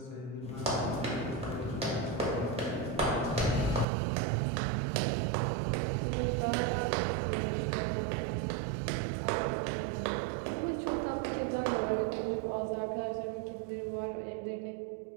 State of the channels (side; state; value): left; drops out; at 3.9 s